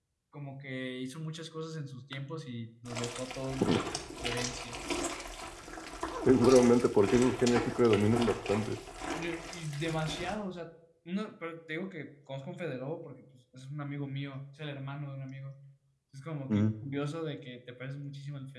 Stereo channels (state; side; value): identical; both; correlation 1.00